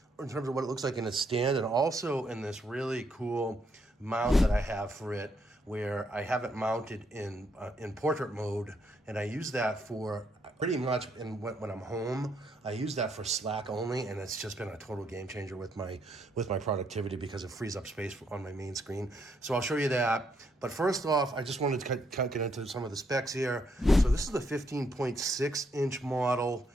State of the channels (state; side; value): normal; both; correlation 0.74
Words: in terms of what it looks like in its stand and also in this really cool mount that I have for it, where I have it mounted in portrait mode, and I use that for pretty much when I'm home. I use that for Slack only, and it's just been a total game changer with my productivity because it frees up space on my main screen. So I'll show you that. But first off, I just wanted to get into some of the specs here. So this is the 15.6 inch model.